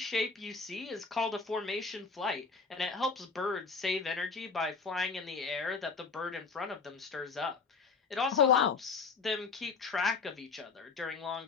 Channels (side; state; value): right; quieter; 4.8 dB